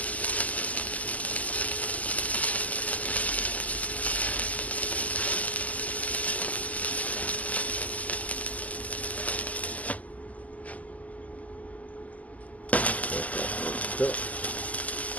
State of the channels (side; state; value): right; late; 0.075 ms